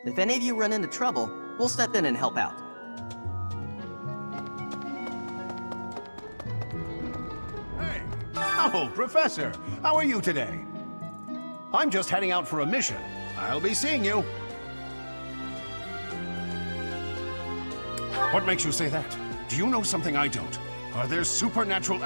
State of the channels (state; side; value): inverted; both; correlation -1.00